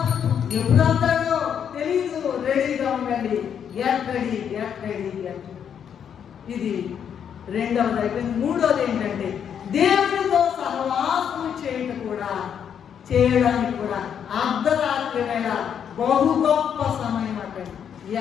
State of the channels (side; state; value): right; quieter; 8.2 dB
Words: ఎప్పుడంటాడో తెలీదు. రెడీగా ఉండండి. Get ready, get ready, get. ఇది రెండవది అయిపోయింది. మూడవది ఏంటంటే దేవునితో సహవాసం చేయడానికి కూడా అర్ధరాత్రి వేళ బహు గొప్ప సమయం అంటే.